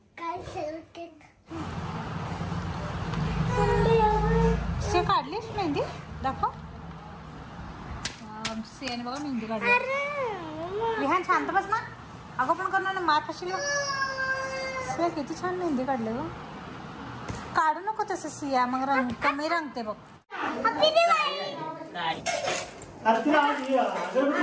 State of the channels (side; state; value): both; identical; correlation 1.00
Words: से काढलीस मेहंदी? दाखव. सेन बघा मेहंदी काढली. विहान शांत बस ना. अगं पण करणार ना, मार खाशील. से किती छान मेहंदी काढले ग. काढू नको तसं सिया, मग रंग कमी रंगते बघ.